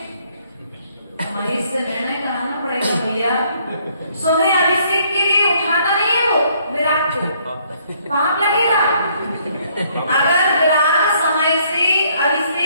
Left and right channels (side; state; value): both; inverted; correlation -0.66